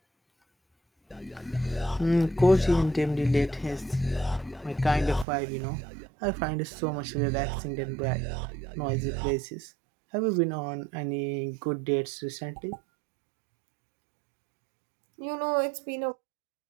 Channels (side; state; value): left; drops out; at 5.2 s